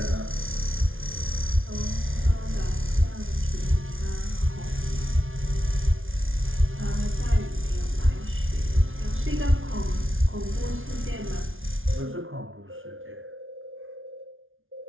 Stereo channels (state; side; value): late; left; 0.58 ms